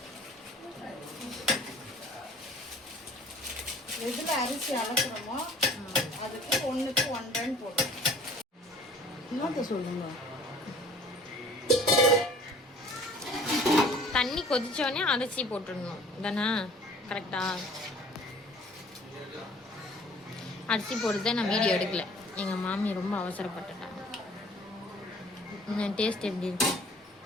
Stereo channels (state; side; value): normal; both; correlation 0.51